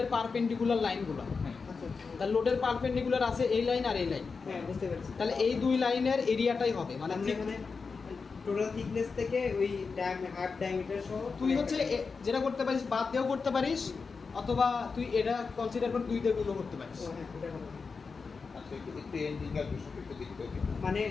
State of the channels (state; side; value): quieter; right; 4.9 dB